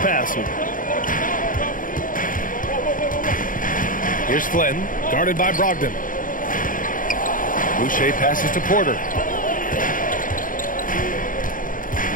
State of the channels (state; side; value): late; right; 0.39 ms